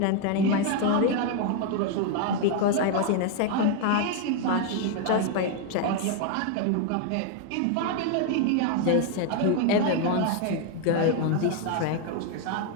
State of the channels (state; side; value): different; both; correlation 0.01